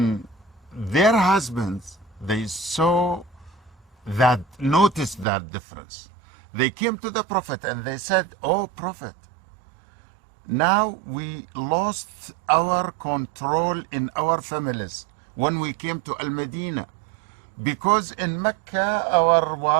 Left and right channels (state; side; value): drops out; left; at 5.2 s